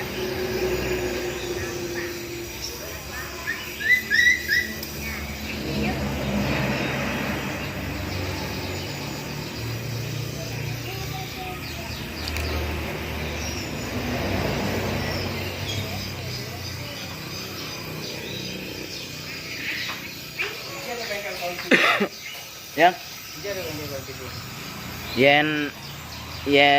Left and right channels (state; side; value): identical; both; correlation 1.00